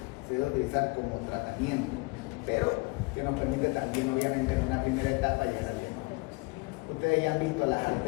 se debe utilizar como tratamiento, pero que nos permite también, obviamente, en una primera etapa llegar al diagnóstico. Ustedes ya han visto las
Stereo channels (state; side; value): quieter; right; 27.2 dB